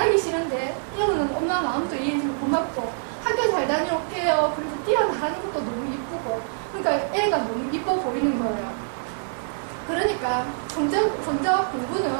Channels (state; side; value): silent; left; digital silence